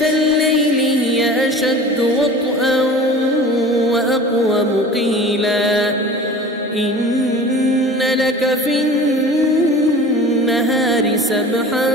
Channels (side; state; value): both; normal; correlation 0.40